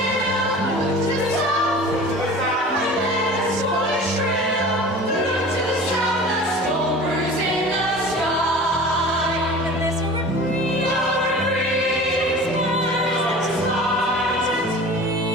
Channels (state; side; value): normal; both; correlation 0.40